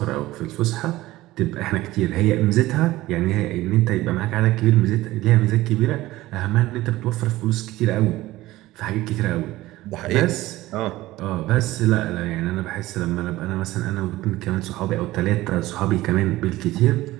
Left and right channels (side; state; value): left; quieter; 17.2 dB